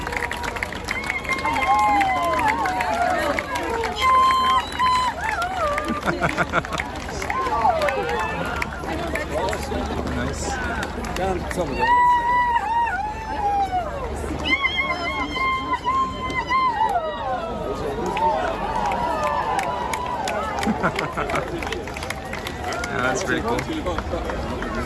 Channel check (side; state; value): both; identical; correlation 1.00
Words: Nice. Yeah, that's pretty cool.